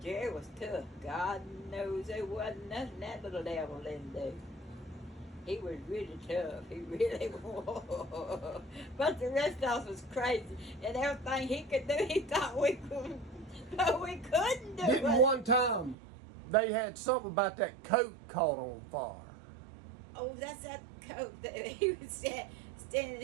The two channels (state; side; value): drops out; left; at 16.0 s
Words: Jerry was tough. God knows there wasn't nothing that little devil didn't do. He was really tough. He really was. But the rest of us was crazy. And everything he could do, he thought we couldn't. But we couldn't do it. Didn't one time they had something about that coat caught on fire? Oh, that's that coat that he was standing